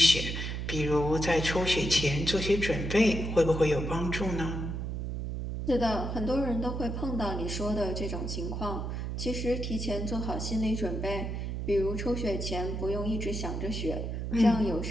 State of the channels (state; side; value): noise; right; hum, 4 dB below the sound